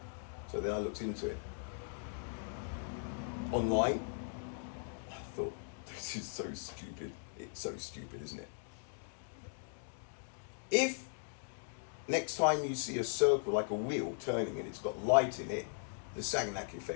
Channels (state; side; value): silent; right; digital silence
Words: So then I looked into it. Online, I thought, this is so stupid. It's so stupid, isn't it? If next time you see a circle like a wheel turning and it's got light in it, the Sagnac